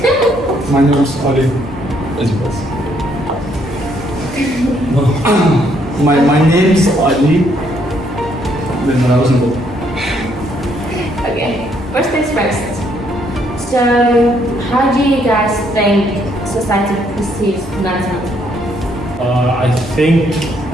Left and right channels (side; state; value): both; normal; correlation 0.70